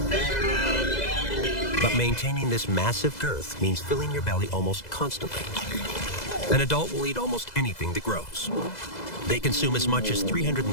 But maintaining this massive girth means filling your belly almost constantly. An adult will eat almost anything that grows. They consume as much as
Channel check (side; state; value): right; late; 2.0 ms